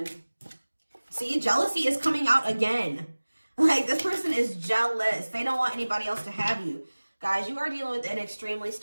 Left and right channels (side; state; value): both; inverted; correlation -1.00